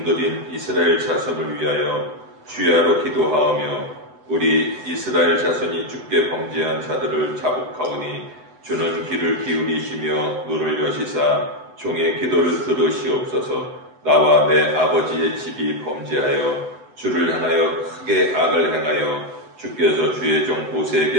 이스라엘 자손을 위하여 주야로 기도하오며, 우리 이스라엘 자손이 주께 범죄한 자들을 자복하오니 주는 귀를 기울이시며 눈을 여시사 종의 기도를 들으시옵소서. 나와 내 아버지의 집이 범죄하여 주를 향하여 크게 악을 행하여 주께서 주의 종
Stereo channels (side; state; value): left; late; 7.9 ms